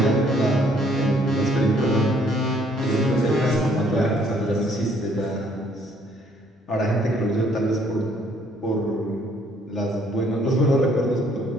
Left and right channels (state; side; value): normal; both; correlation 0.64